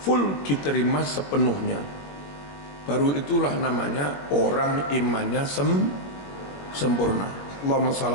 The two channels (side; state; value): right; late; 21 ms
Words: diterima sepenuhnya. Baru itulah namanya orang imannya sempurna. Allahumma shalli